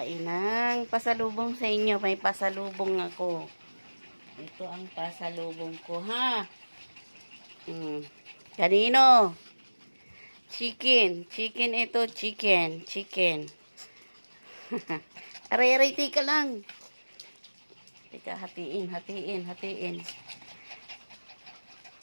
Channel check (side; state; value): both; inverted; correlation -1.00